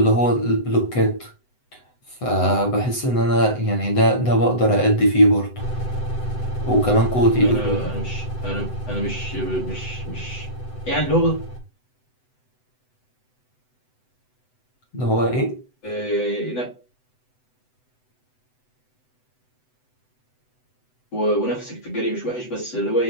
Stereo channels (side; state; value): right; late; 7.9 ms